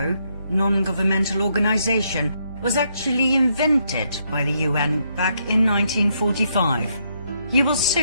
non-governmental organization, was actually invented by the UN back in 1945. You will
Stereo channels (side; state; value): both; inverted; correlation -0.76